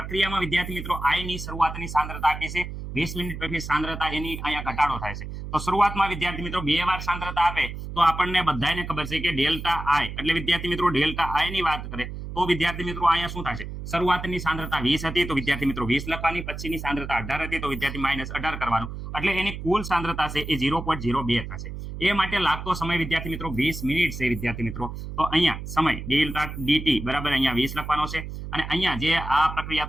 વિદ્યાર્થી મિત્રો I ની શરૂઆતની સાંદ્રતા આપી છે. 20 મિનિટ પછી સાંદ્રતા એની અહીંયા ઘટાડો થાય છે. તો શરૂઆતમાં વિદ્યાર્થી મિત્રો 2 વાર સાંદ્રતા આપે તો આપણને બધાને ખબર છે કે ડેલ્ટા I, એટલે વિદ્યાર્થી મિત્રો ડેલ્ટા I ની વાત કરે તો વિદ્યાર્થી મિત્રો અહીંયા શું થશે? શરૂઆતની સાંદ્રતા 20 હતી તો વિદ્યાર્થી મિત્રો 20 લખવાની, પછીની સાંદ્રતા 18 હતી તો વિદ્યાર્થી -18 કરવાનું. એટલે એની કુલ સાંદ્રતા છે એ 0.02 થશે. એ માટે લાગતો સમય વિદ્યાર્થી મિત્રો 20 મિનિટ છે વિદ્યાર્થી મિત્રો. તો અહીંયા સમય ડેલ્ટા dt બરાબર અહીંયા 20 લખવાનો છે. અને અહીંયા જે આ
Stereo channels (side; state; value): right; noise; hum, 8 dB below the sound